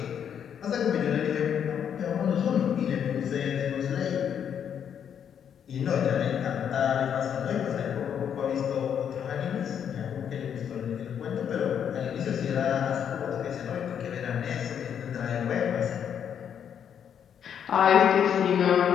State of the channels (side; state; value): right; quieter; 8.4 dB